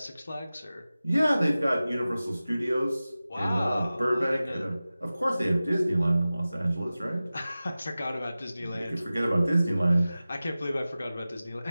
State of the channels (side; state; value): both; inverted; correlation -0.96